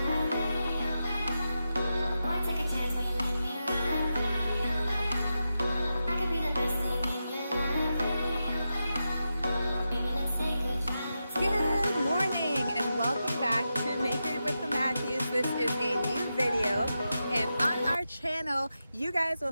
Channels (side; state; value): both; inverted; correlation -0.89